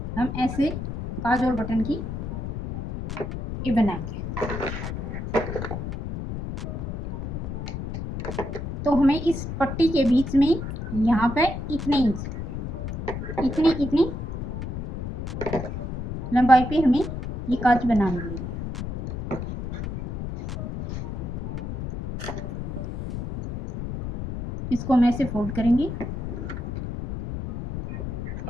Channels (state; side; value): noise; left; rumble, 6 dB below the sound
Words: हम ऐसे काज और बटन की ये बनाएंगे। तो हमें इस पट्टी के बीच में यहाँ पे इतने इंच इतनी लंबाई पे हमें ये काज बनानी है। इसको हम ऐसे फोल्ड करेंगे